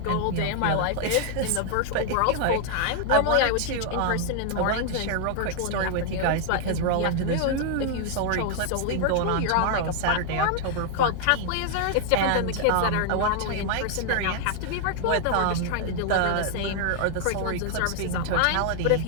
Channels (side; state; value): both; different; correlation 0.00